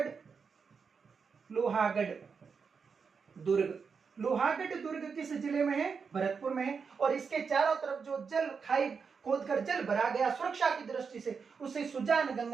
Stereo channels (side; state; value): left; quieter; 5.7 dB